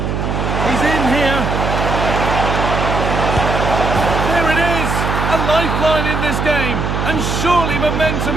He's in here. There it is! A lifeline in this game. And surely momentum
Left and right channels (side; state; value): right; noise; hum, 1 dB below the sound